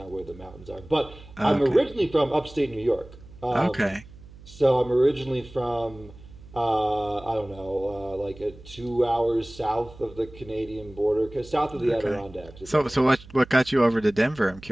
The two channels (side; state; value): right; noise; hum, 20 dB below the sound